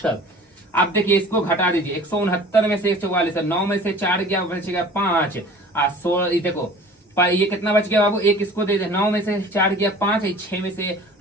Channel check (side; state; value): both; normal; correlation 0.45